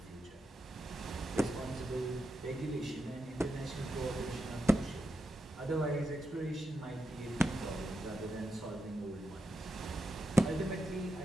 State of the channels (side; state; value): both; normal; correlation 0.87